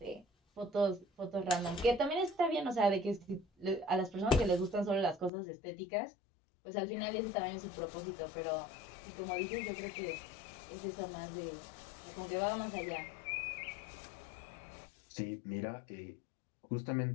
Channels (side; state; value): right; drops out; at 5.3 s